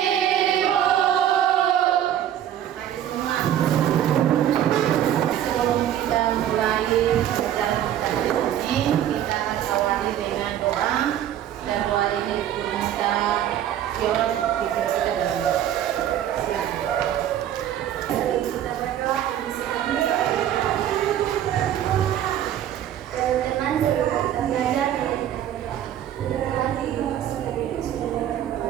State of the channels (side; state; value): left; quieter; 11.0 dB